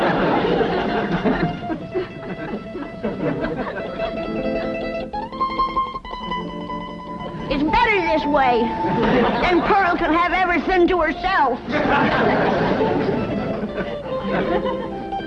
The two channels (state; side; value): identical; both; correlation 1.00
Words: It's better this way. Then Pearl can have everything to herself.